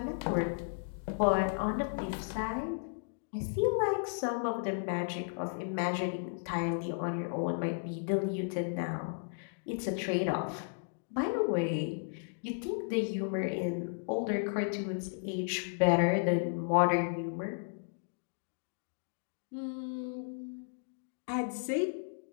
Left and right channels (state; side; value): silent; right; digital silence